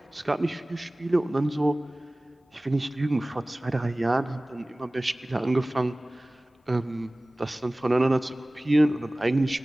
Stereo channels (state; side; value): normal; both; correlation 0.98